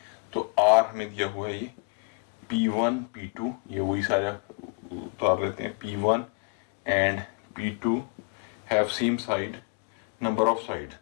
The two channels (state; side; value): quieter; right; 35.6 dB